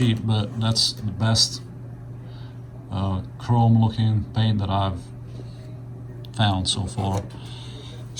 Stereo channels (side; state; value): both; identical; correlation 1.00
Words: but that's the best chrome looking paint that I've found so far.